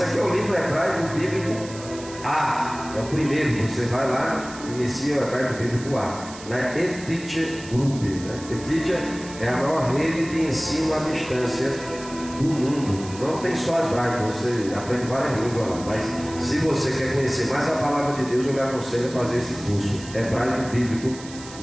aqui é o livro Hebraico Bíblico A, é o primeiro. Você vai lá, inicia o Hebraico Bíblico A, na eTeacher Group, né? eTeacher é a maior rede de ensino à distância do mundo. Não tem só hebraico, você aprende várias línguas lá, mas se você quer conhecer mais a palavra de Deus, eu lhe aconselho a fazer esse curso Hebraico Bíblico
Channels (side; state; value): right; noise; hiss, 16 dB below the sound